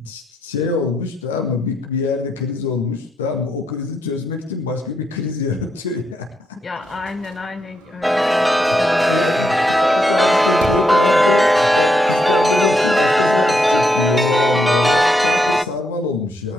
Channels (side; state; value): both; normal; correlation 0.80